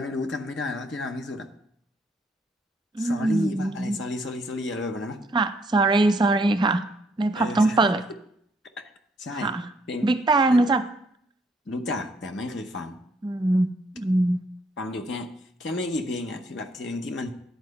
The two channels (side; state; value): both; normal; correlation 0.69